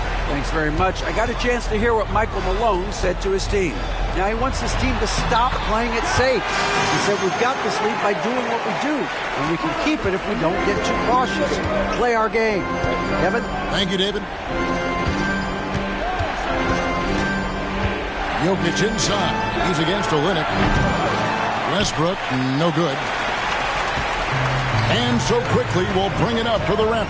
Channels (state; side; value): identical; both; correlation 1.00